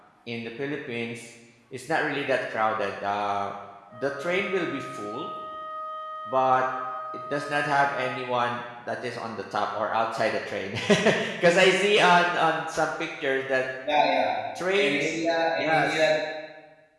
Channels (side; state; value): both; identical; correlation 1.00